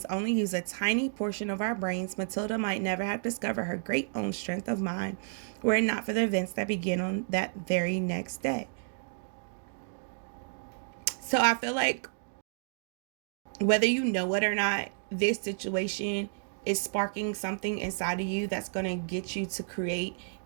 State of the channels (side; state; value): left; silent; digital silence